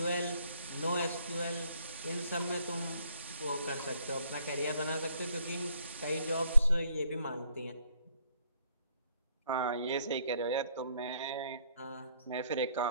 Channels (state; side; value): inverted; both; correlation -0.67